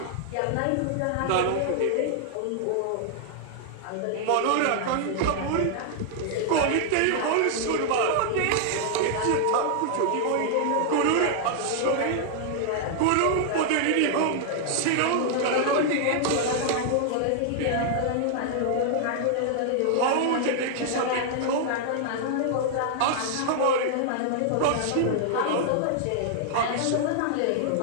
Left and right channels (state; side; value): different; both; correlation -0.01